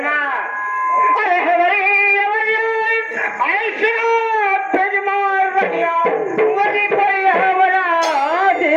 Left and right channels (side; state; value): both; identical; correlation 1.00